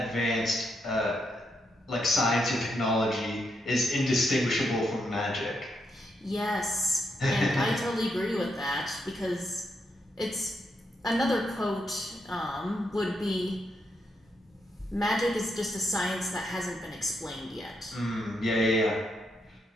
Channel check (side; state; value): both; normal; correlation 0.80